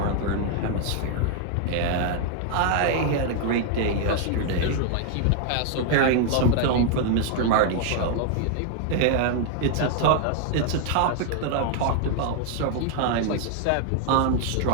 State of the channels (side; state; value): both; different; correlation 0.00